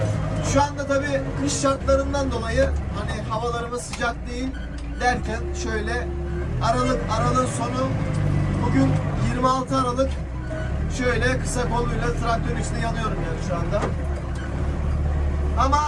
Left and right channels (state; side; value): identical; both; correlation 1.00